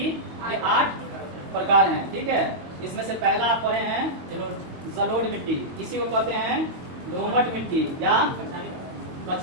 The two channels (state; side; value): late; left; 22 ms